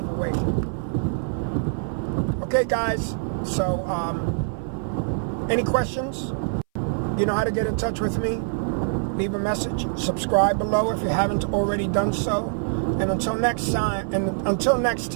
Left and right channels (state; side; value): silent; left; 59 dB below the other